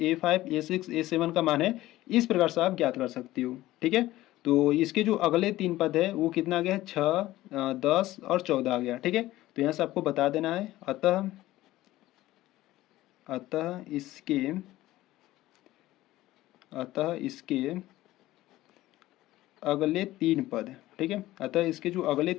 A5 A6 A7 का मान है इस प्रकार से आप ज्ञात कर सकते हो, ठीक है। तो इसके जो अगले 3 पद है वो कितना आ गया है 6 10 और 14 आ गया, ठीक है। तो यहाँ से आपको बता देना है अतः इसके अगले 3 पद, ठीक है। अतः इसके जो अगले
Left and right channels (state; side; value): quieter; right; 16.2 dB